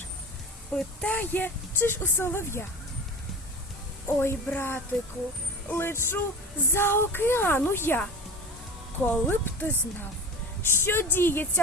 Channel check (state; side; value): normal; both; correlation 0.32